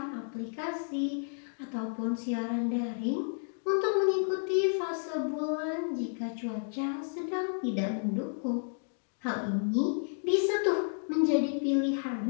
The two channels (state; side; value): silent; right; digital silence